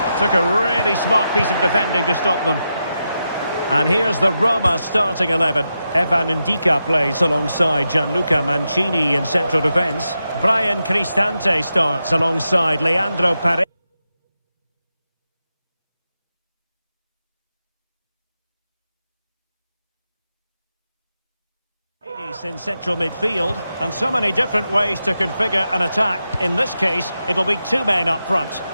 Took a really smart piece of defending to stop them. And here's the Roma starting 11. Evan Ndika plays alongside Gianluca Mancini in central defence. Brian Cristante starts alongside Leandro Paredes in central midfield. And so many different ways to configure an attack. In this case, it'll be two men up front.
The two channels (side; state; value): both; inverted; correlation -0.88